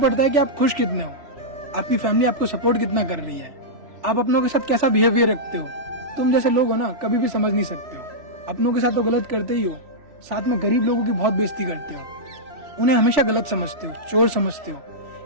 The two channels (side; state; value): left; late; 3.1 ms